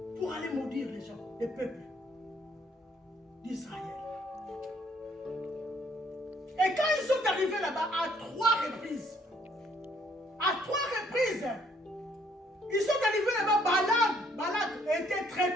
Pour aller maudire les gens, les peuples d'Israël. Et quand ils sont arrivés là-bas, à 3 reprises, ils sont arrivés là-bas, Balak était très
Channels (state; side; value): normal; both; correlation 0.65